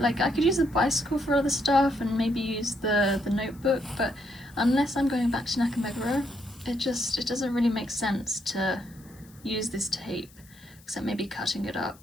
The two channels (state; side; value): noise; left; hiss, 26 dB below the sound